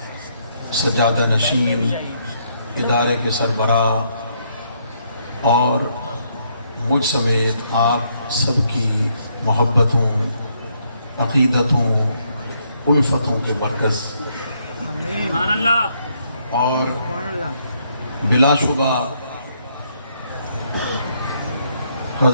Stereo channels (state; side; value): inverted; both; correlation -0.73